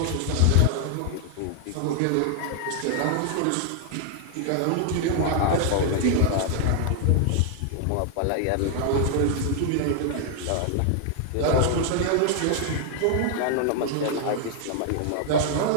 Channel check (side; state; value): both; different; correlation 0.00